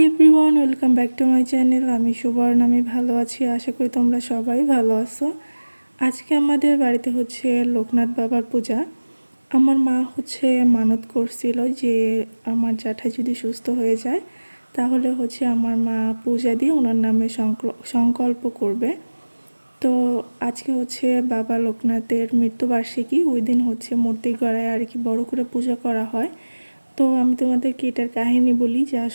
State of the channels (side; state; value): both; inverted; correlation -1.00